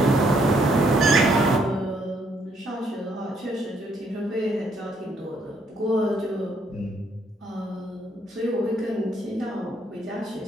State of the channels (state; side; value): normal; both; correlation 0.70